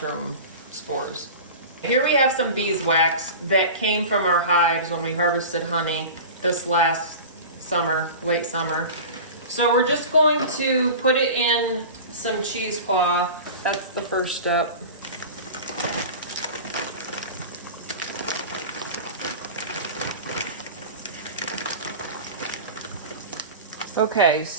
spores. Here we have some beeswax that came from our hives when we harvested honey this last summer, late summer. So we're just going to put it in some cheesecloth. That's the first step. Okay,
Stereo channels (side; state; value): both; inverted; correlation -0.33